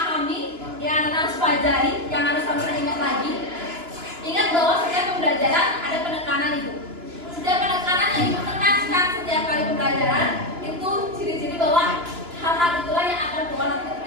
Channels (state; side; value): late; left; 2.9 ms